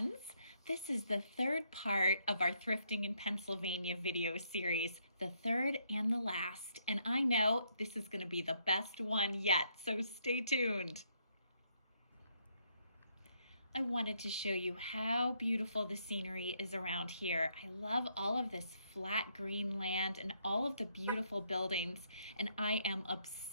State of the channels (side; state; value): both; inverted; correlation -0.73